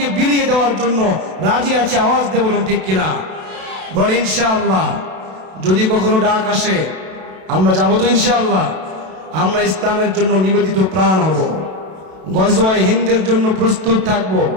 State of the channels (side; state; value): left; late; 32 ms